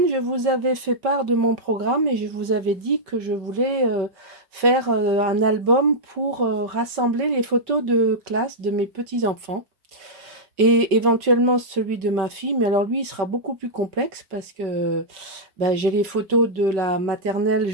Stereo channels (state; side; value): late; left; 5.3 ms